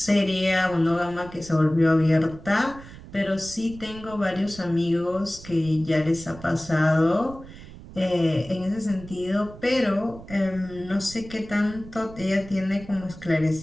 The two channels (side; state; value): right; noise; rumble, 16 dB below the sound